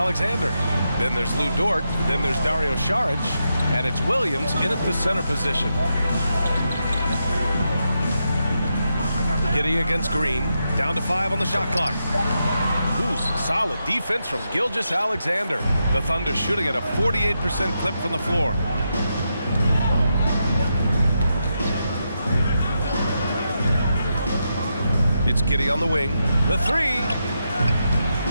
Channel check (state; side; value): inverted; both; correlation -0.85